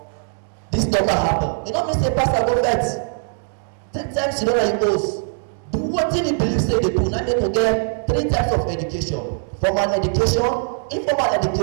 this don happen, e no mean say pastor go vex. Take time to know that he goes. Do wetin he believe say dey do. Na make you get 3 types of education: formal education, informal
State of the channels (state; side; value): silent; left; digital silence